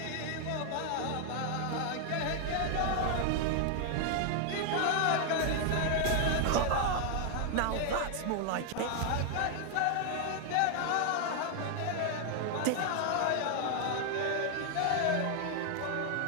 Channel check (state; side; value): different; both; correlation 0.00